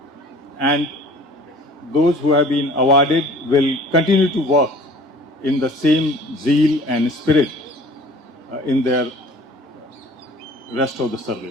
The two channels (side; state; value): both; normal; correlation 0.48